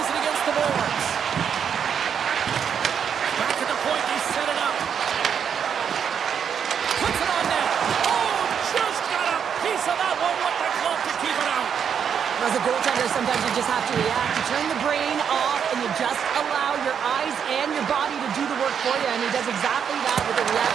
it against the boards. Back at the point, they set it up. Puts it on net. Oh, just got a piece of that one with the glove to keep it out. As a goaltender, sometimes you just have to react. You turn the brain off, and you just allow your eyes and your body to do the work for you, and he does exactly that with a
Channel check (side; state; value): left; quieter; 7.6 dB